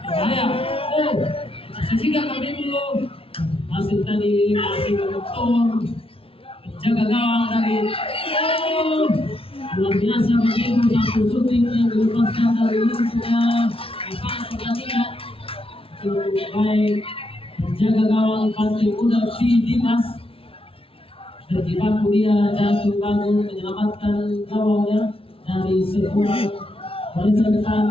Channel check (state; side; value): late; right; 0.26 ms